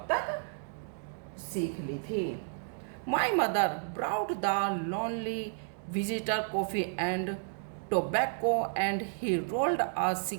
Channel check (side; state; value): left; silent; digital silence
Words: तक सीख ली थी। My mother brewed the lonely visitor coffee and tobacco and he rolled a